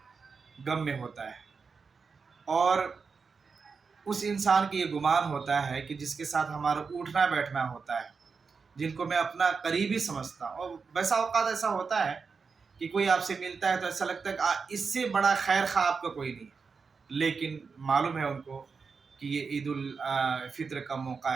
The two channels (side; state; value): left; quieter; 5.1 dB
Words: غم میں ہوتا ہے، اور اس انسان کی یہ گمان ہوتا ہے کہ جس کے ساتھ ہمارا اٹھنا بیٹھنا ہوتا ہے، جن کو میں اپنا قریبی سمجھتا ہوں، اور ویسا اوقات ایسا ہوتا ہے کہ کوئی آپ سے ملتا ہے تو ایسا لگتا ہے کہ اس سے بڑا خیر خواہ آپ کا کوئی نہیں ہے، لیکن معلوم ہے ان کو کہ یہ عید الفطر کا موقع